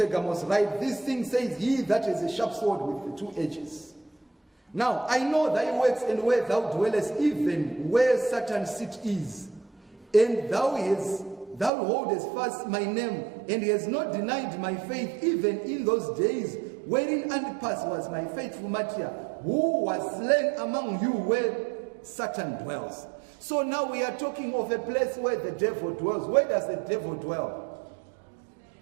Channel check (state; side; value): drops out; left; at 11.7 s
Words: write, this thing says, he that is a sharp sword with the two edges. Now I know thy works and where thou dwellest, even where Satan's seat is. And thou holdest fast my name, and he has not denied my faith, even in those days wherein Antipas was my faithful martyr, who was slain among you where Satan dwells. So now we are talking of a place where the devil dwells. Where does the devil dwell?